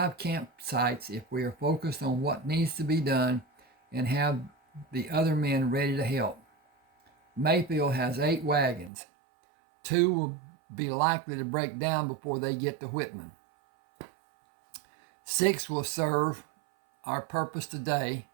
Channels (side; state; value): left; drops out; at 8.9 s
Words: campsites if we are focused on what needs to be done and have the other men ready to help. Mayfield has 8 wagons. 2 will be likely to break down before they get to Whitman. 6 will serve our purpose today,